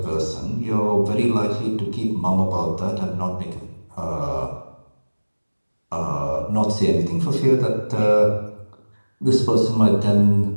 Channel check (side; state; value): both; inverted; correlation -1.00